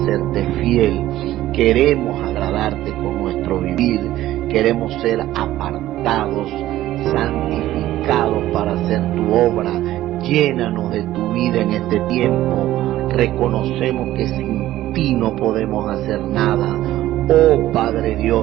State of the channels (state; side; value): quieter; left; 14.5 dB